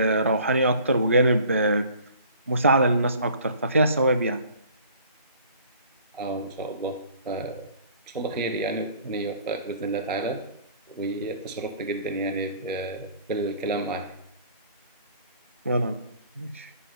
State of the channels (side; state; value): both; inverted; correlation -0.52